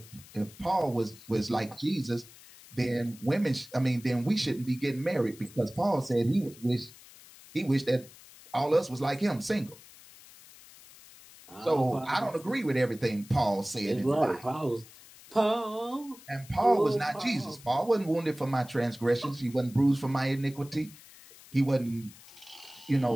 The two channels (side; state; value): left; noise; hiss, 21 dB below the sound